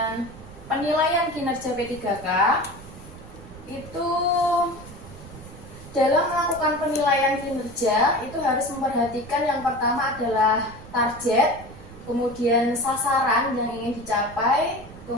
penilaian kinerja P3K, itu dalam melakukan penilaian kinerja itu harus memperhatikan yang pertama adalah target, kemudian sasaran yang ingin dicapai,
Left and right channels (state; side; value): noise; right; rumble, 17 dB below the sound